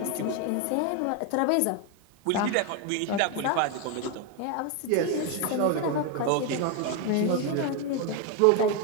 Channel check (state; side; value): different; both; correlation 0.01